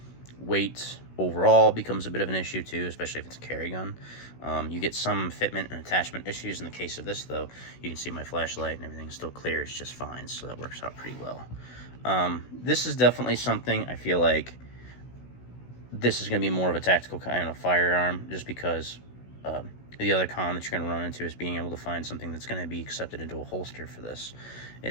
Weight overall becomes a bit of an issue too, especially if it's a carry gun. You get some fitment and attachment issues. In the case of this though, you can see my flashlight and everything still clears just fine, so that works out pretty well. This is definitely something I feel like this is going to be more of a tactical kind of firearm, just because the other con that you're going to run into is being able to find something that's going to be accepted into a holster for this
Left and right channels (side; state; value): right; late; 16 ms